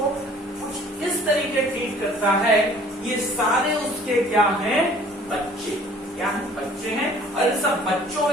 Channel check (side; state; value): both; normal; correlation 0.52